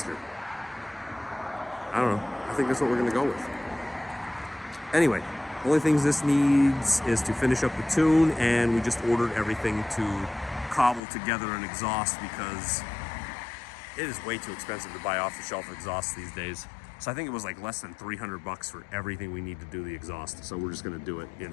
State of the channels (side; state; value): right; drops out; at 11.0 s